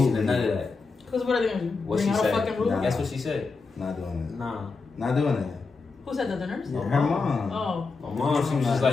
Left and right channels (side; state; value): right; quieter; 4.3 dB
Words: and none of that. Because what are they going to bring out a fucking rule? That's what she said. Not doing it. Nah. Not doing it. Who said that? The nurse? Yeah, her mom. Oh. My mom, she was just